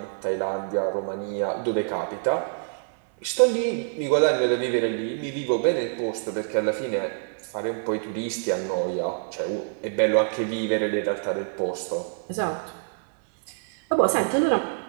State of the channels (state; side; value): silent; left; 61 dB below the other